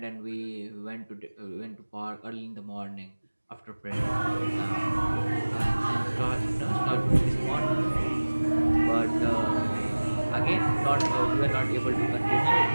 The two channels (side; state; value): both; inverted; correlation -1.00